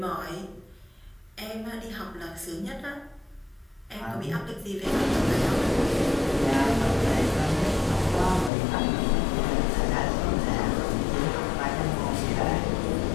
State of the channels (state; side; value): drops out; right; at 8.5 s